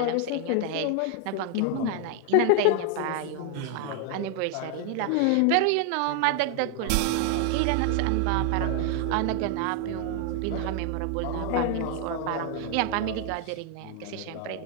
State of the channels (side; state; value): both; different; correlation 0.00